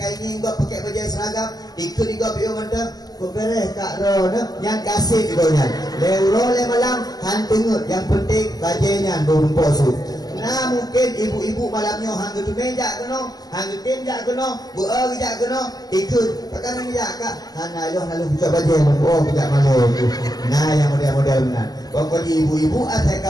ini enggak pakai baju seragam, ikut juga bio mendem. Kau beres kak Ron, yang kasih ibunya. Leuro le malam hantengut, yang penting bajunya merumpok su. Nah mungkin ibu-ibu malamnya hang tu meja keno, hang tenjak keno, buah gejak keno, ikut pakai meja kak. Hana lo nalu buka baju, oh buka malu. Nah yang model-model benar. Pokoknya ibu-ibu asal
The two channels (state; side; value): late; right; 0.19 ms